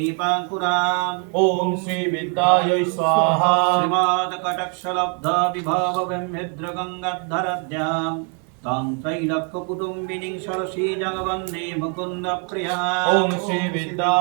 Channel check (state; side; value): quieter; left; 39.5 dB